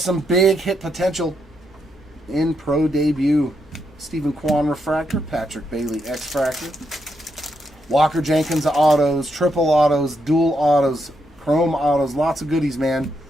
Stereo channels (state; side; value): normal; both; correlation 0.80